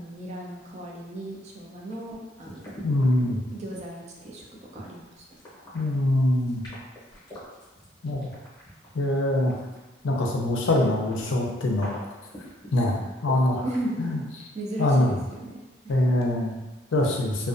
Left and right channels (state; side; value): normal; both; correlation 0.68